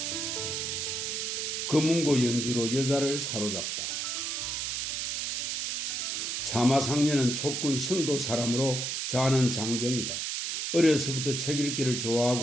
금운고 연주로 여자를 사로잡다. 사마상려는 촉군 성도 사람으로 자는 장경이다. 어려서부터 책 읽기를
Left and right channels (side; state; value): right; noise; hiss, 2 dB below the sound